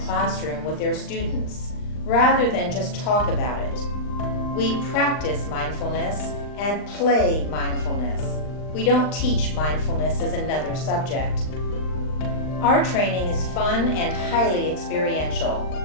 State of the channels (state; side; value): late; right; 39 ms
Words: classroom with their students, rather than just talk about it. We practice mindfulness and play mindfulness. We don't teach mindfulness as another subject. Our training is fun and highly experiential.